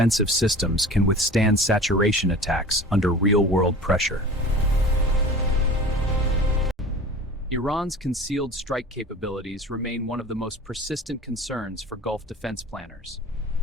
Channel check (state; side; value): normal; both; correlation 0.39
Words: systems can withstand saturation attacks under real-world pressure. Iran's concealed strike capabilities remain one of the most persistent concerns for Gulf defense planners.